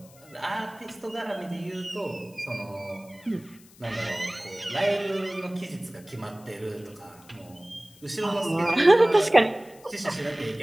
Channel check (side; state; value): left; noise; hiss, 25 dB below the sound